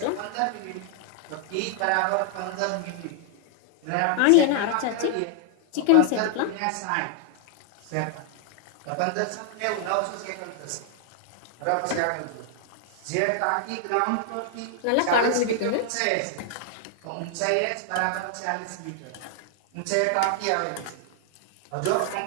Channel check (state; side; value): different; both; correlation 0.00